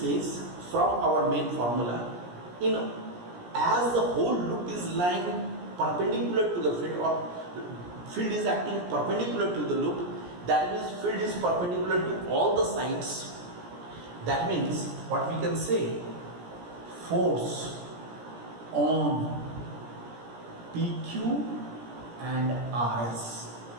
case, from our main formula, as the whole loop is lying perpendicular to the field, or field is acting perpendicular to the loop, that means field is perpendicular to all the sides. That means what we can say, force on PQ and RS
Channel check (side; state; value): left; late; 17 ms